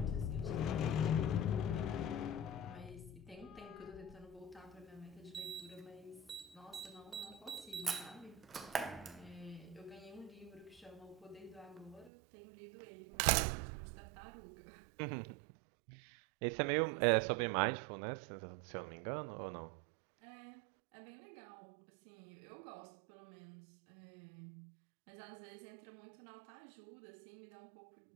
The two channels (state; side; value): drops out; left; at 12.1 s